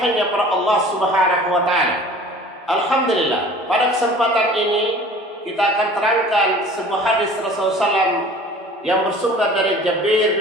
pada Allah Subhanahu wa taala. Alhamdulillah, pada kesempatan ini kita akan terangkan sebuah hadis Rasulullah SAW yang bersumber dari Jabir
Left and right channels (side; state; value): both; normal; correlation 0.46